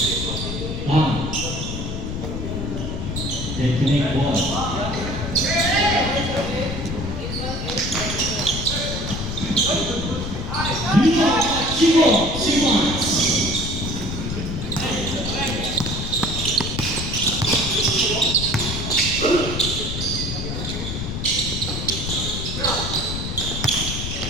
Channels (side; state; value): left; noise; rumble, 4 dB below the sound